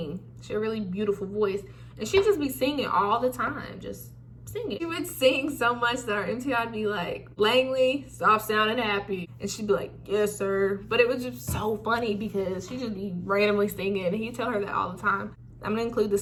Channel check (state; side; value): identical; both; correlation 1.00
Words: She had a really beautiful voice, and she'd just be singing all the time, just singing. She would sing so much that our MT would be like, Langley, stop sounding happy. And she'd be like, yes, sir. But it was just so funny because she'd just be randomly singing, and he'd tell her that all the time. I'm gonna include the